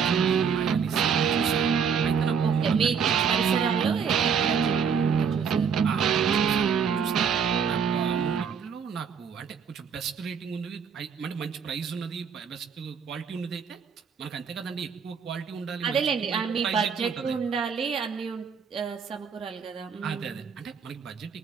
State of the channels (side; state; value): left; quieter; 6.7 dB